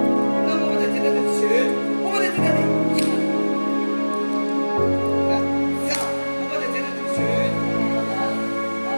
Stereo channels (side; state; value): both; inverted; correlation -1.00